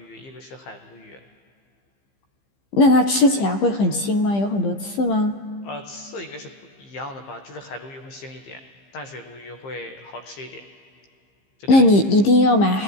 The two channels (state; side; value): late; right; 15 ms